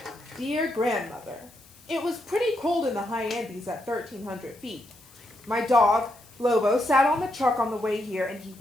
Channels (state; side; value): noise; left; hiss, 25 dB below the sound